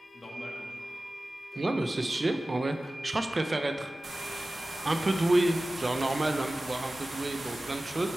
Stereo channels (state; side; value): normal; both; correlation 0.96